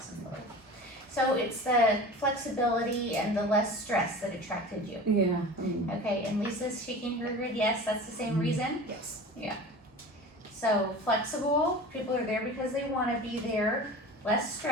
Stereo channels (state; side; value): normal; both; correlation 0.36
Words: and filler. So it's the flexibility and the less stress that attracted you. Yeah. Okay, and Lisa's shaking her head, yes, that's the same reason? Yes. Yeah. So flexible, people are there because they wanna be there, less